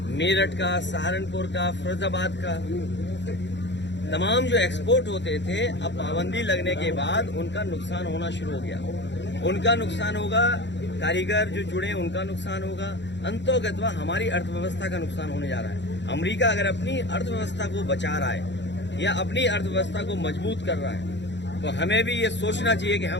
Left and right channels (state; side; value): late; right; 0.52 ms